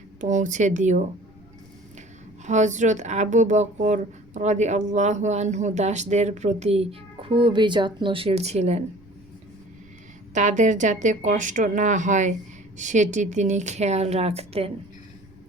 পৌঁছে দিও। হযরত আবু বকর রাদিয়াল্লাহু আনহু দাসদের প্রতি খুবই যত্নশীল ছিলেন। তাদের যাতে কষ্ট না হয় সেটি তিনি খেয়াল রাখতেন।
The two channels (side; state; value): right; noise; rumble, 29 dB below the sound